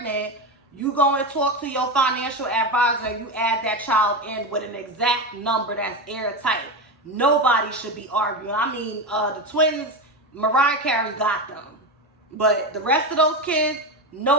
you go and talk to your financial advisor and you add that child in with an exact number that's airtight. Nobody should be arguing. I mean, the twins, Mariah Carey got them. But the rest of those kids,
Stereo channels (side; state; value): both; normal; correlation 0.17